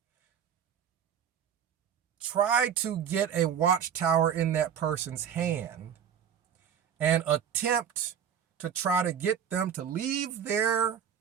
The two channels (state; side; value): quieter; left; 8.4 dB